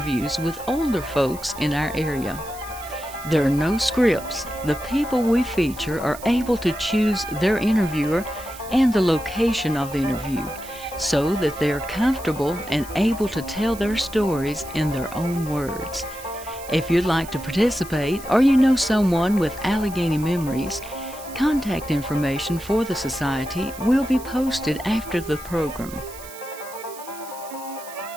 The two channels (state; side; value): noise; right; hiss, 16 dB below the sound